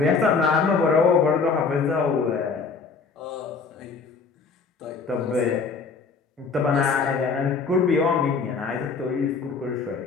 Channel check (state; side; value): quieter; right; 5.0 dB